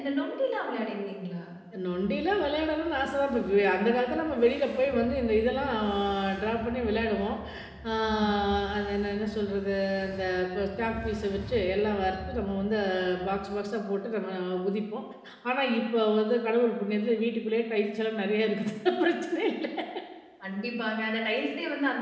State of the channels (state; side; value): identical; both; correlation 1.00